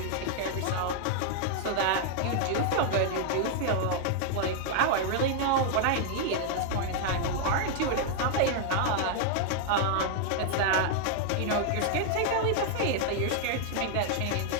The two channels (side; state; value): both; different; correlation 0.00